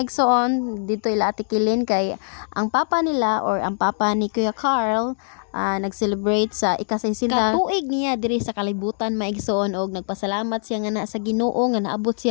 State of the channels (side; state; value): right; silent; digital silence